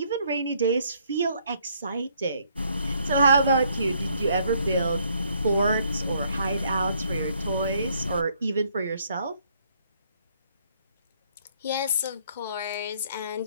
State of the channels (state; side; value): inverted; both; correlation -0.68